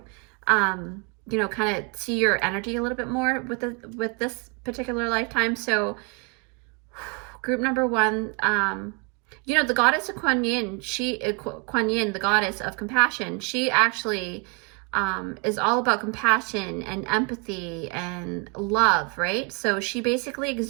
Kind of see your energy a little bit more with this particular lifetime. So group number one, the goddess of Kuan Yin, Kuan Yin, the goddess of compassion, she actually is all about compassion and empathy and love, right? So she basically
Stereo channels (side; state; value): left; quieter; 33.3 dB